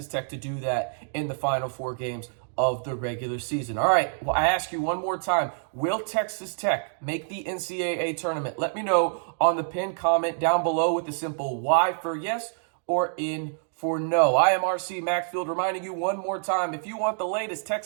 Tech to do that in the final 4 games. of the regular season. All right, well, I ask you one more time, will Texas Tech make the NCAA tournament? Let me know on the pinned comment down below with the simple Y for yes or N for no. I am RC Maxfield, reminding you one more time, if you want the latest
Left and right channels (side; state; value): left; silent; digital silence